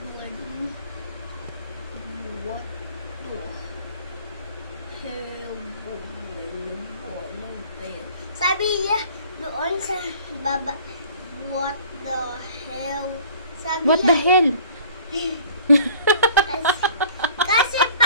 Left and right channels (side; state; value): both; inverted; correlation -0.50